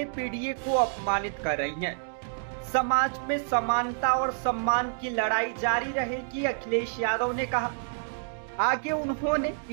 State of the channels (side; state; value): left; silent; digital silence